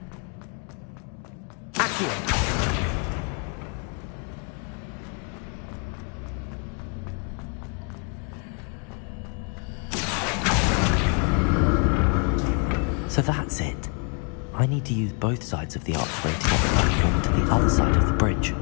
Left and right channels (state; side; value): quieter; right; 38.2 dB